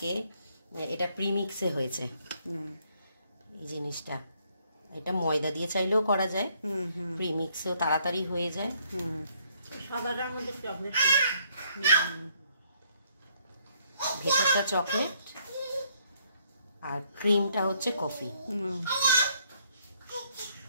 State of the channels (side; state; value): both; inverted; correlation -0.68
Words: এটা প্রিমিক্সে হয়েছে এই জিনিসটা। এটা ময়দা দিয়ে চাইলেও করা যায়, প্রিমিক্সেও তাড়াতাড়ি হয়ে যায়। সাদাটার মধ্যে চকলেট, ভেতরটা চকলেট আর ক্রিমটা হচ্ছে কফি।